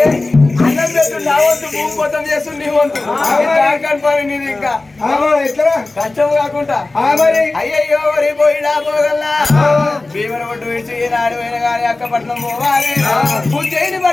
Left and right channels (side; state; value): right; quieter; 3.2 dB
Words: అన్నం పెట్టు నా వంతు భూమి మొత్తం చేస్తు నీ వంతు పని నీది ఇంకా ఎట్లా కష్టం కాకుండా మరి అయ్యయ్యో వరి పోయినా పోగల్లా భీమన పట్టు విడిచి ఈనాడు పోయిన కానీ అక్కపట్నం పోవాలి ఉజ్జయిని